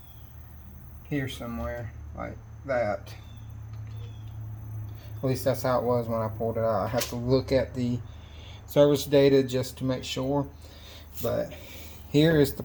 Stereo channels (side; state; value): both; identical; correlation 1.00